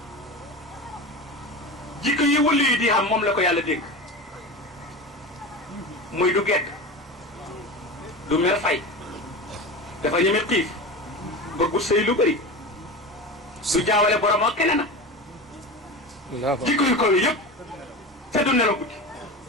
jikko yi wëllu yi di xam moom la ko yàlla dénk muy du gedd du mer fay dafa ñeme xiif bëggu sëy lu bëri du jaawale borom ak keneen jikko yu kaw yi yëpp te du nelaw guddi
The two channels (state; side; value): normal; both; correlation 0.27